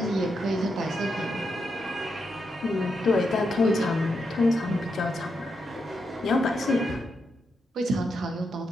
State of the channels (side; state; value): both; normal; correlation 0.83